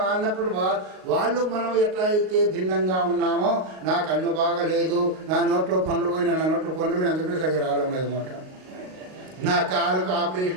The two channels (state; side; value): late; left; 38 ms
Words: అన్నప్పుడు వాళ్ళు మనం ఎట్లా అయితే భిన్నంగా ఉన్నామో, నా కన్ను బాగలేదు, నా నోట్లో పండ్లు పోయినా, నా నోట్లో పండ్లు పోయినా అందుకే సరిగ్గా రావడం లేదు మాట. నా కాలుకు